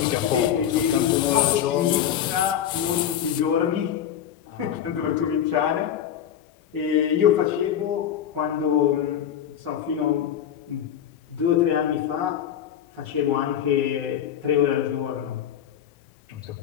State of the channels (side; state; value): right; quieter; 9.6 dB